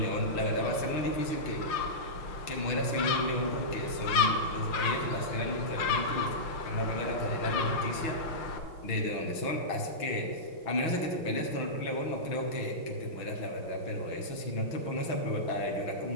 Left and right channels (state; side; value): late; right; 6.2 ms